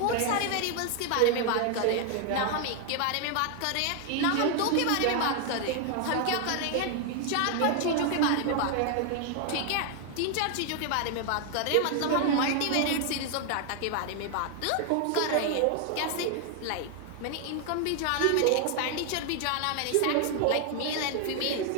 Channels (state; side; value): different; both; correlation 0.00